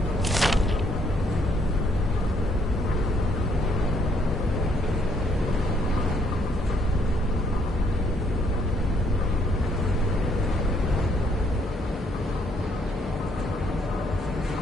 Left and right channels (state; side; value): normal; both; correlation 0.68